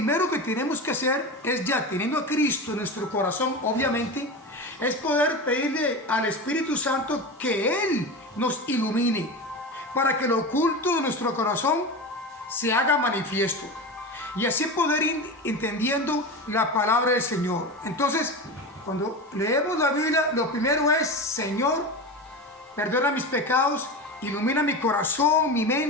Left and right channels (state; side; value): normal; both; correlation 0.25